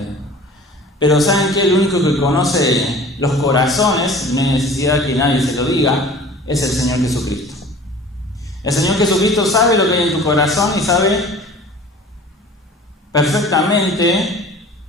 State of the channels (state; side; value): normal; both; correlation 0.44